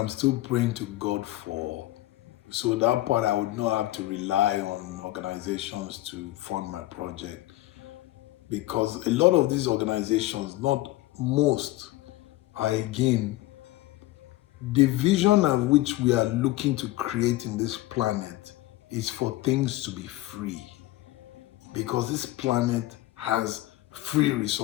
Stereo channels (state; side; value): quieter; right; 17.4 dB